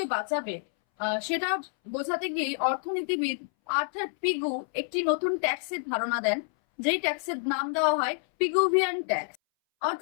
বাঁচাবে, সেটা বোঝাতে গিয়ে অর্থনীতিবিদ আর্থার পিগু একটি নতুন ট্যাক্সের ধারণা দেন, যেই ট্যাক্সের নাম দেওয়া হয় পিগুভিয়ান ট্যাক্স।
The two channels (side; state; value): right; silent; 59 dB below the other